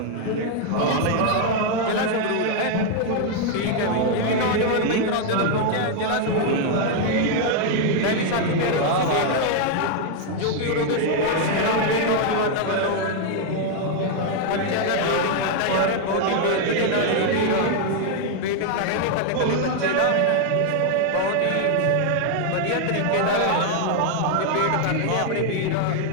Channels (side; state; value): both; different; correlation 0.00